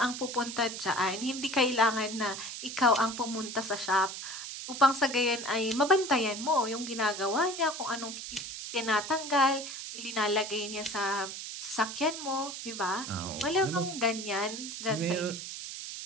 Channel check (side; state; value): right; noise; hiss, 8 dB below the sound